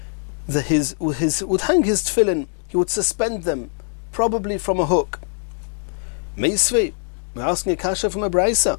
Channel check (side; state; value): right; silent; 61 dB below the other